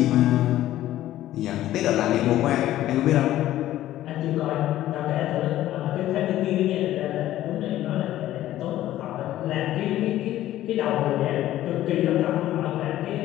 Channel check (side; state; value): right; quieter; 13.9 dB